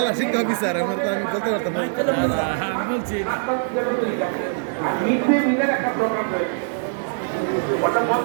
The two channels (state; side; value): silent; left; digital silence